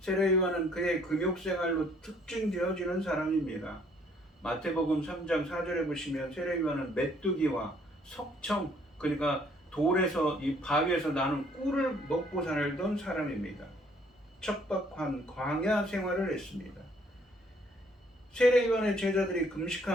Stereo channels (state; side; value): normal; both; correlation 0.63